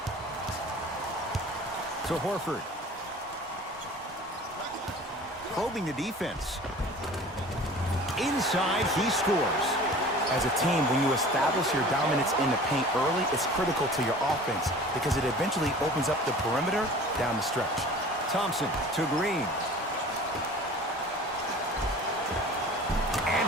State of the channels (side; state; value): both; normal; correlation 0.43